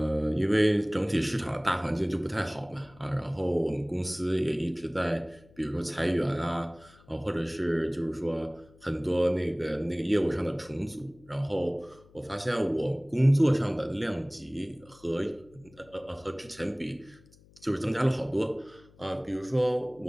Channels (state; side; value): noise; left; hum, 26 dB below the sound